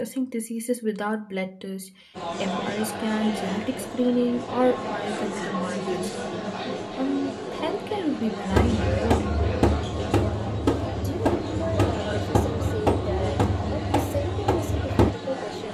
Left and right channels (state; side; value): identical; both; correlation 1.00